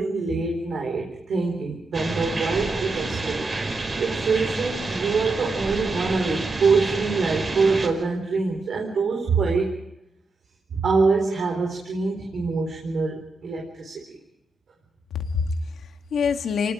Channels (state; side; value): quieter; left; 3.0 dB